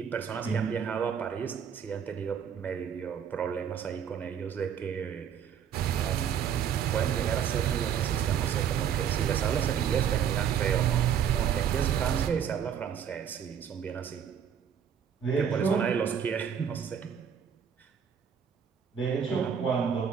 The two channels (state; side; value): quieter; left; 8.2 dB